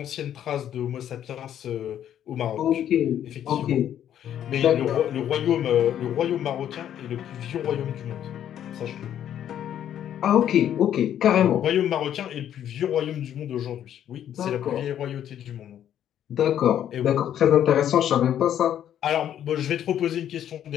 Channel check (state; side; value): quieter; right; 10.4 dB